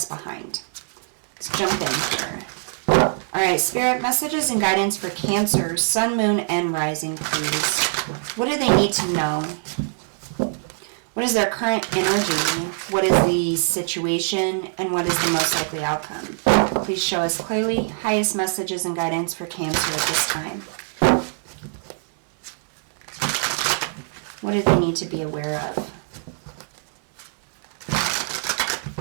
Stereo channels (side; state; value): left; silent; digital silence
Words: behind. Let's jump in here. Alright, Spirit, messages and guidance for Cancer, Sun, Moon, and Rising, please. What do they need to know? What is their current energy? What is the situation? And what is the most likely outcome? Please show us clearly. Highest messages and guidance for Cancer at this time. What do they need to be aware of?